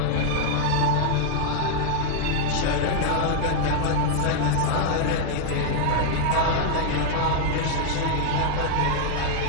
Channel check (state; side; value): different; both; correlation 0.00